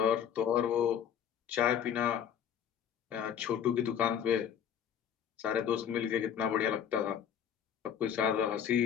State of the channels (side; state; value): right; quieter; 8.8 dB